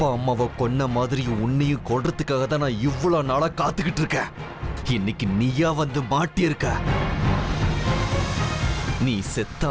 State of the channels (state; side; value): identical; both; correlation 1.00